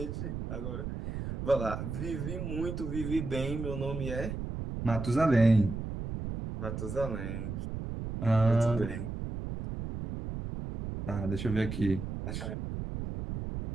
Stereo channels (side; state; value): right; noise; rumble, 5 dB below the sound